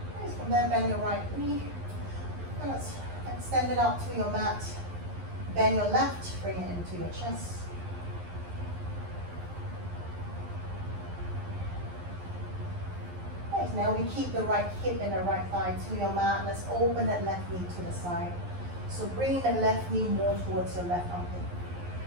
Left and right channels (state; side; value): late; left; 11 ms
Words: From there, bend your right knee, and let's Extend it out to your mat. Bend your left, bring it into your chest. Right, now we keep the right hip and the right thigh to your mat. Let's open that left knee to the side. So bring that left knee more towards your left armpit.